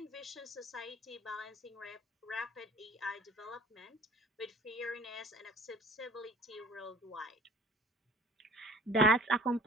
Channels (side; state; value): both; normal; correlation 0.47